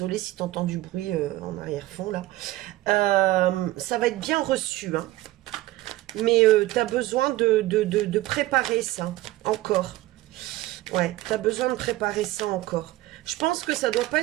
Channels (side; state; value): left; quieter; 17.2 dB